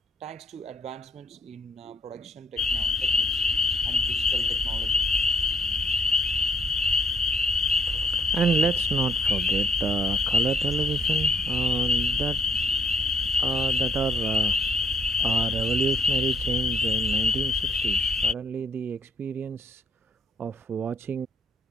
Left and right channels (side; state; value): both; normal; correlation 0.66